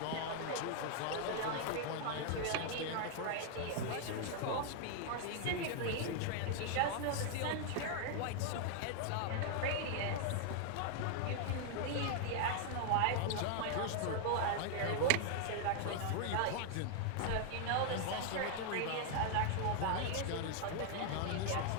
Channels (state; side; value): different; both; correlation 0.00